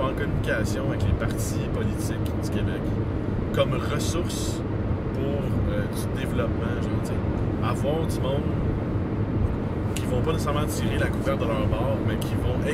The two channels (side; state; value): both; identical; correlation 1.00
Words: en communication avec les partis politiques du Québec comme ressource pour du développement, genre, tu sais, avoir du monde qui vont pas nécessairement tirer la couverture de leur bord, mais qui vont